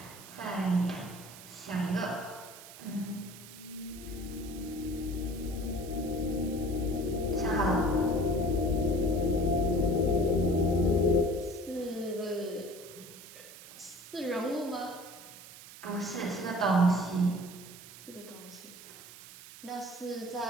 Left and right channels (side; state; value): right; noise; hiss, 16 dB below the sound